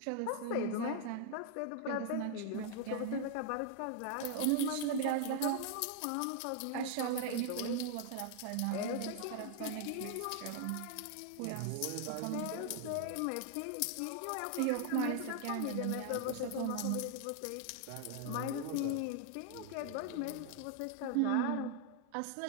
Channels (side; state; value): both; different; correlation 0.00